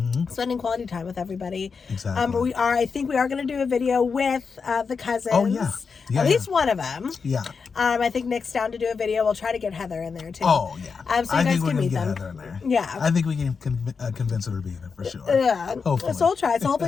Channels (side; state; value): right; quieter; 5.4 dB